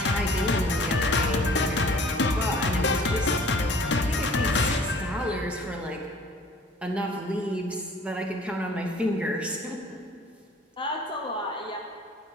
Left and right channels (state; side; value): normal; both; correlation 0.50